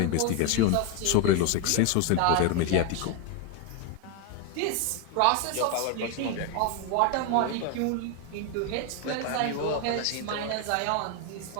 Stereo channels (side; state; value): both; different; correlation 0.01